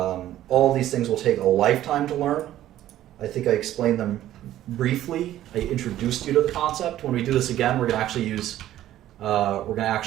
these things will take a lifetime to learn. I think I explained them briefly. I introduced you to the concept. When we do this again, we're going to actually use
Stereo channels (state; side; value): quieter; left; 13.1 dB